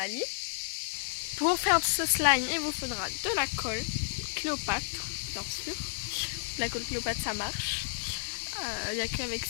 Pour faire ce slime, il vous faudra de la colle Cléopâtre, bien sûr. La colle Cléopâtre, ça marche. Il n'y a qu'avec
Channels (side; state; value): right; silent; digital silence